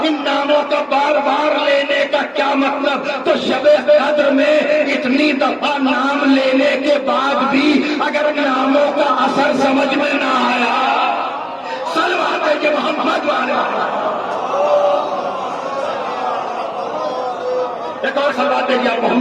ان ناموں کا بار بار لینے کا کیا مطلب، تو شب قدر میں اتنی دفعہ نام لینے کے بعد بھی اگر ناموں کا اثر سمجھ میں نہ آیا، سلوات ہے کہ محمد والے ایک اور صلوات دیجیے آپ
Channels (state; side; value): identical; both; correlation 1.00